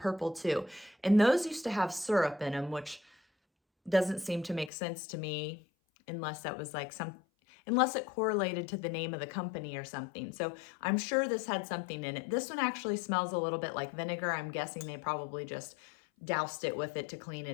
too. And those used to have syrup in them, which doesn't seem to make sense to me unless that was like unless it correlated to the name of the company or something. So I'm sure this had something in it. This one actually smells a little bit like vinegar. I'm guessing they probably just doused it with it to clean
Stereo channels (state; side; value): drops out; right; at 4.7 s